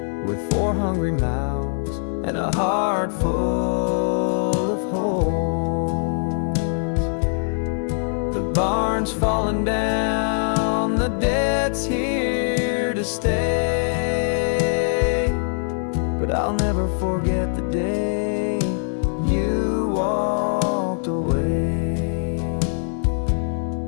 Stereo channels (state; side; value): silent; right; 57 dB below the other